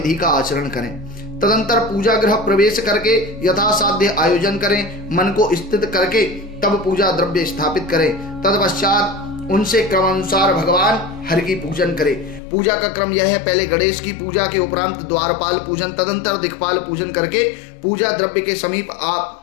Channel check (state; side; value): drops out; right; at 12.4 s